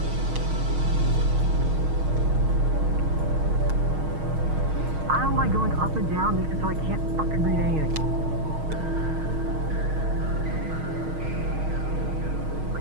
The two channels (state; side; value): late; left; 6.4 ms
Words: I don't like going up and down because I can't fucking read anything.